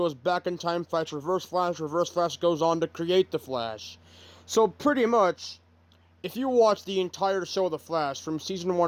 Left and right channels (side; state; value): both; identical; correlation 1.00